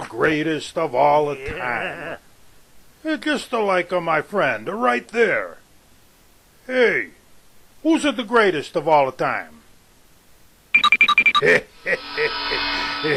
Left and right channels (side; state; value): both; identical; correlation 1.00